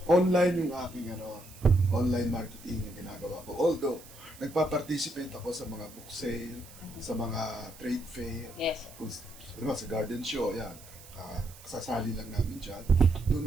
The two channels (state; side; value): noise; right; hiss, 20 dB below the sound